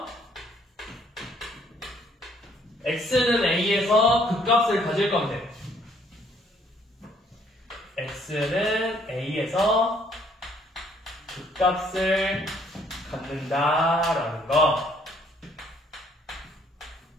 x는 a에서 극값을 가질 건데, x는 a에서 극값을 갖는다라는 거,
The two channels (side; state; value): both; normal; correlation 0.65